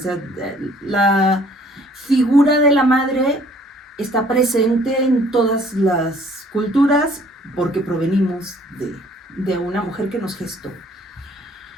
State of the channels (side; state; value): both; normal; correlation 0.58